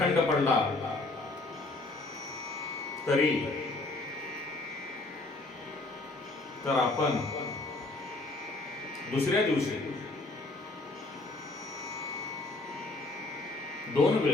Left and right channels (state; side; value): quieter; right; 3.1 dB